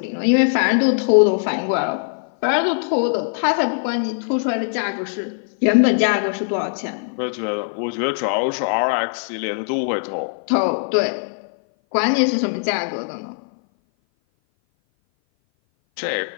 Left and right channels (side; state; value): right; silent; 58 dB below the other